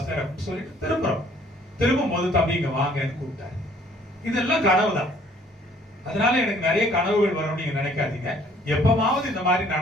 அப்படின்னு சொல்லிட்டு திரும்புறோம். திரும்பும் போது தம்பி இங்க வாங்கன்னு கூப்பிட்டாரு. இதெல்லாம் கனவு தான். அதனால எனக்கு நிறைய கனவுகள் வரும்னு நீங்க நினைக்காதீங்க. எப்பமாவது இந்த மாதிரி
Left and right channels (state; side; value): normal; both; correlation 0.59